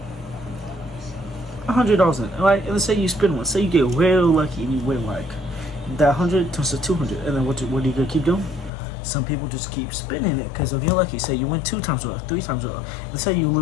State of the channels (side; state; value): right; drops out; at 8.7 s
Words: $100 in, right? And let's say you spin one. Say you get real lucky and you win like that 100 turns to 200, and then what are you gonna keep doing? Some people just keep spinning it because if you're lucky, say you win 2 times or 3 times or let's say you